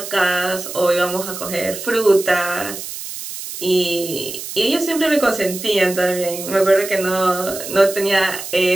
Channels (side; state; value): right; noise; hiss, 9 dB below the sound